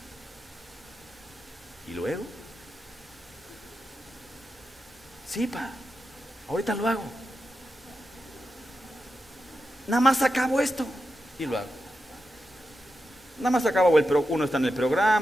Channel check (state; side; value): normal; both; correlation 0.89